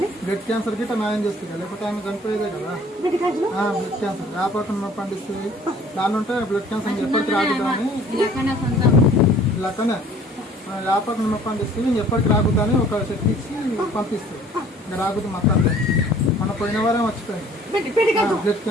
బ్లడ్ క్యాన్సర్ కి న్యాయం చేస్తుంది లేకపోతే ఆమె చనిపోయేదే కదా. బ్లడ్ క్యాన్సర్ వ్యాపారం పండిస్తుంది దాని ఉంటే బ్లడ్ క్యాన్సర్ ఎప్పటికి రాకుదని ఇలాకనే వ్యాపారం పండిస్తుంది ఎప్పటికి రాకుదని ఒక శక్తి ఇచ్చి పంపిస్తుంది. ఇంకా రాకుతుంది మొత్తం మన పోయిన వారం వచ్చిపోయింది బ్లడ్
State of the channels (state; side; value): normal; both; correlation 0.53